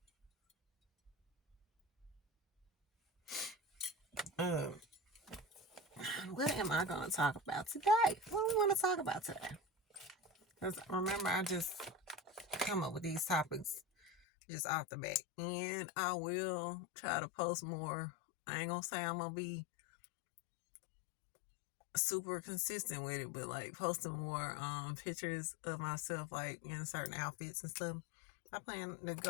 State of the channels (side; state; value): right; drops out; at 14.1 s